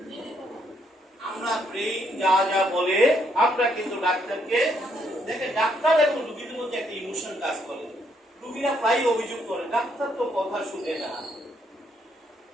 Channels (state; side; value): normal; both; correlation 0.72